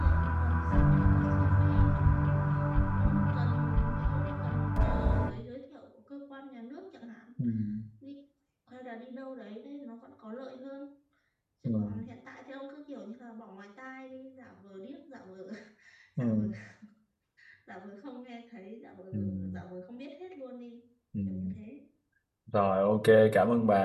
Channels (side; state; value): both; identical; correlation 1.00